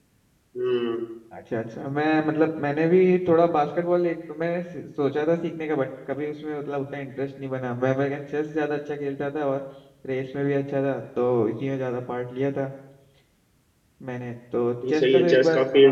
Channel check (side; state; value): both; identical; correlation 1.00